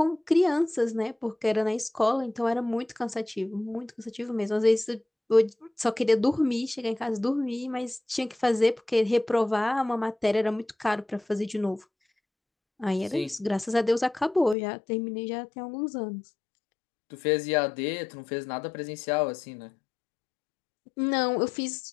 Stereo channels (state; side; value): drops out; right; at 14.6 s